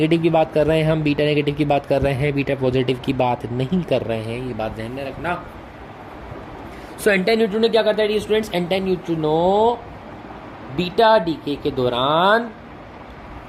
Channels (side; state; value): both; identical; correlation 1.00